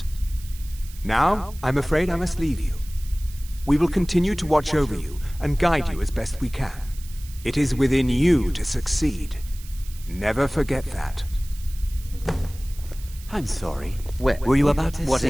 Now, I'm afraid I must leave you. We will continue to watch over you and guide you as best we can. It is within you to succeed. Never forget that. I'm sorry. Were you about to What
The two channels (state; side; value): noise; right; hiss, 20 dB below the sound